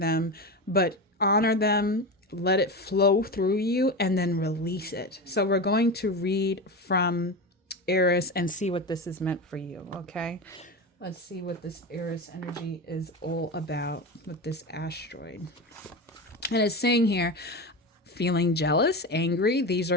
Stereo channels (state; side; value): normal; both; correlation 0.22